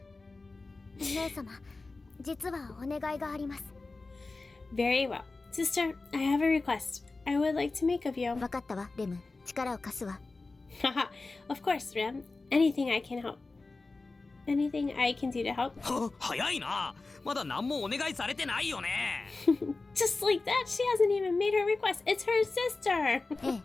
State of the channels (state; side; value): quieter; right; 3.6 dB